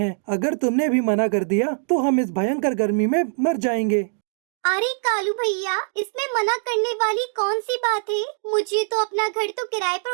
अगर तुमने भी मना कर दिया तो हम इस भयंकर गर्मी में मर जाएंगे। अरे कालू भैया, इसमें मना करने वाली कौन सी बात है? मुझे तो अपना घर तो किराए पर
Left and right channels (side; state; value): left; silent; digital silence